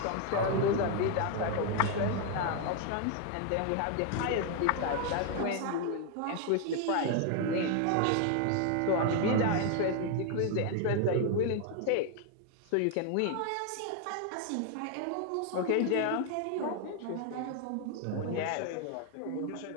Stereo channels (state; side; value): different; both; correlation 0.00